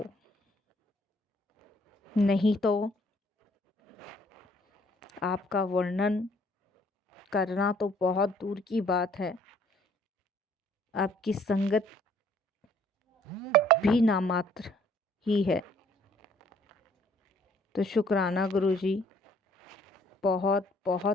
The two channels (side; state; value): both; normal; correlation 0.61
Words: नहीं तो आपका वर्णन करना तो बहुत दूर की बात है, आपकी संगत भी नामात्र ही है। तो शुक्राना गुरुजी, बहुत